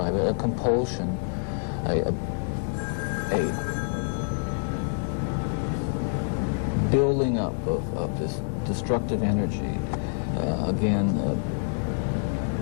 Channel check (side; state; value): right; silent; digital silence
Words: it. A compulsion, a building up of this destructive energy.